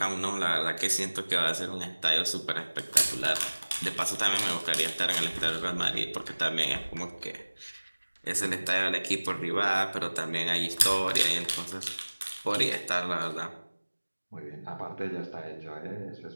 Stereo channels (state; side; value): inverted; both; correlation -1.00